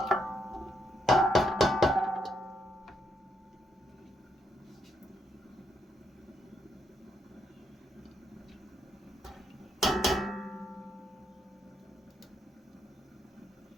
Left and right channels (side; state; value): both; normal; correlation 0.77